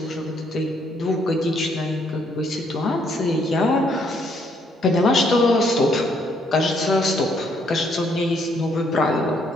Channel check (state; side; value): normal; both; correlation 0.70